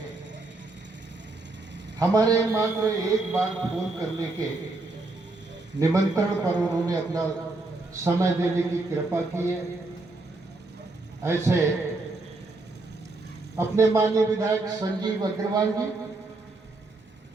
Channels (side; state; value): left; quieter; 3.2 dB